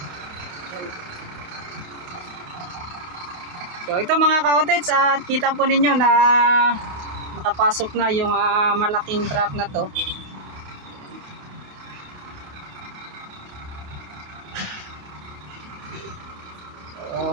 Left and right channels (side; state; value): left; late; 28 ms